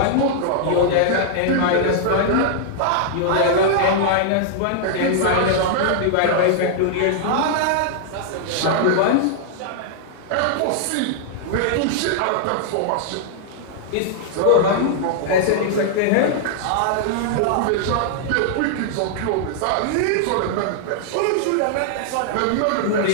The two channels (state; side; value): different; both; correlation -0.01